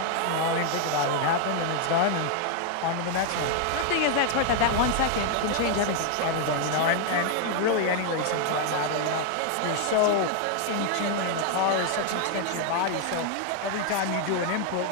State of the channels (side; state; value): both; different; correlation 0.00